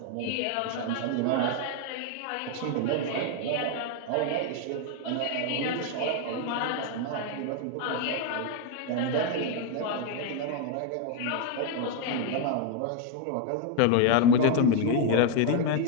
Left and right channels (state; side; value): different; both; correlation 0.01